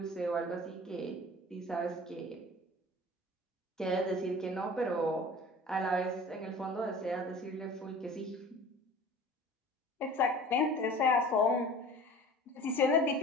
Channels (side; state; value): both; normal; correlation 0.42